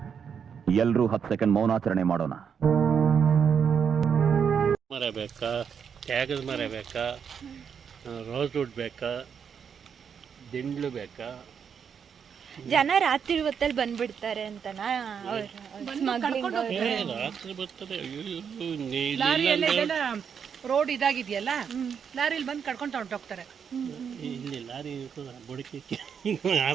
ಎಲ್ಲರೂ 10 ಸೆಕೆಂಡ್ ಮೌನಾಚರಣೆ ಮಾಡೋಣ. ಮರ ಬೇಕಾ, ತ್ಯಾಗದ ಮರ ಬೇಕಾ, ರೋಸ್ವುಡ್ ಬೇಕಾ, ದಿಂಡ್ಲು ಬೇಕಾ? ಜನ ರಾತ್ರಿ ಹೊತ್ತಲ್ಲಿ ಬಂದ್ಬಿಡ್ತಾರೆ ಅಂತನಾ ಸ್ಮಗ್ಲಿಂಗ್? ರಾತ್ರಿ ಬರ್ತಾರೆ. ರೋಡ್ ಇದಾಗಿದೆಯಲ್ಲ, ಲಾರಿಲಿ ಬಂದು ಕಡ್ಕೊಂಡು ಹೊರಟೋಗ್ತಾರೆ. ಇಲ್ಲಿ ಲಾರಿ ಬುಡಕಿ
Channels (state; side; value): quieter; left; 7.2 dB